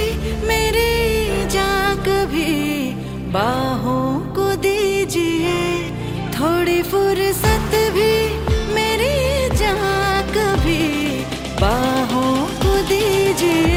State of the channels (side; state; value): both; identical; correlation 1.00